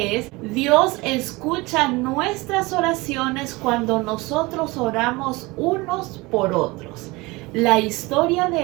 es: Dios escucha nuestras oraciones cuando nosotros oramos unos por otros. La historia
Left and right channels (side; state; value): left; quieter; 23.1 dB